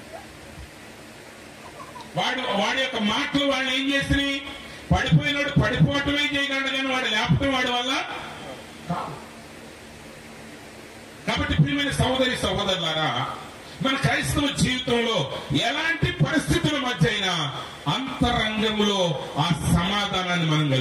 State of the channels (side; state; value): both; identical; correlation 1.00